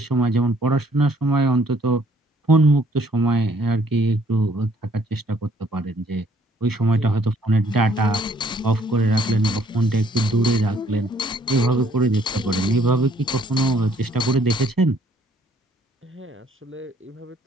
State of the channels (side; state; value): both; normal; correlation 0.63